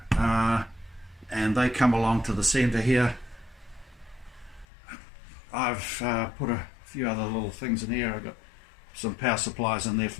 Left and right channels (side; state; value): right; drops out; at 4.7 s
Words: and they come along to the centre here. I've put a few other little things in here. I've got some power supplies in there